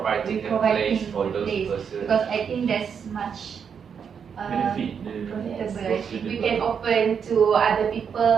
the place for those persons. Because I think there's much Benefit. profitable. We can open to other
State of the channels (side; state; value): left; quieter; 7.0 dB